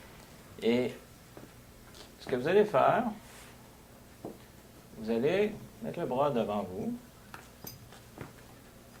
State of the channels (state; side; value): identical; both; correlation 1.00